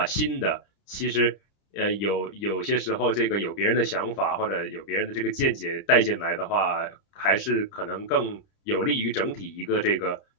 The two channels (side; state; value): right; late; 30 ms